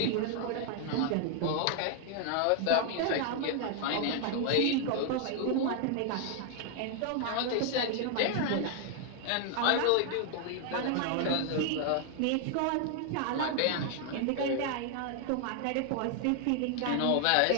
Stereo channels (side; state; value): both; different; correlation 0.00